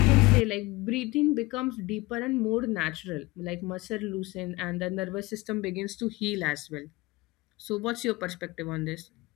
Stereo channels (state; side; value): quieter; right; 21.9 dB